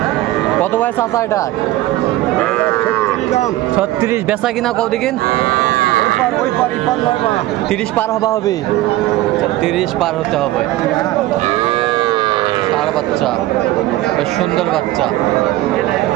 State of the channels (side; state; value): left; quieter; 16.1 dB